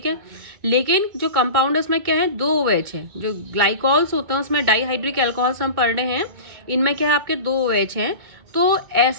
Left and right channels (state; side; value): late; left; 2.2 ms